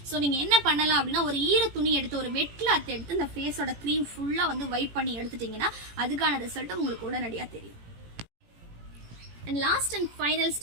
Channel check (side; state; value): left; late; 18 ms